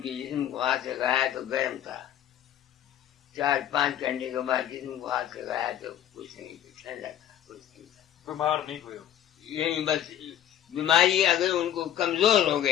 जिस्म को हाथ लगाया तो गर्म था, 4-5 घंटे के बाद जिस्म को हाथ लगाया तो कुछ नहीं, ठंडा था, कुछ नहीं था। बीमार नहीं हुए? यही बस बीमारी अगर उनको कमजोर हो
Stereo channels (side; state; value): right; quieter; 11.0 dB